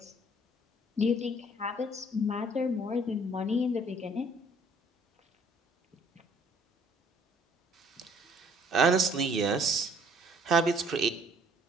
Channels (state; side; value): normal; both; correlation 0.59